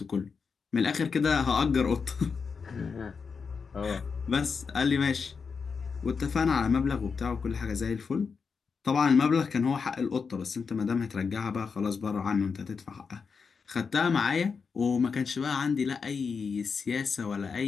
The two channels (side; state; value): right; quieter; 5.5 dB